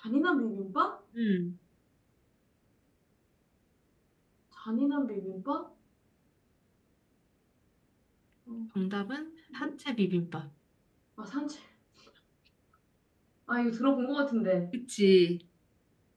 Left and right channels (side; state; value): both; identical; correlation 1.00